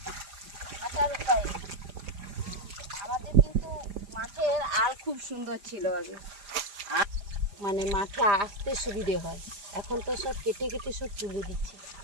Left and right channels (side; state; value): left; late; 4.9 ms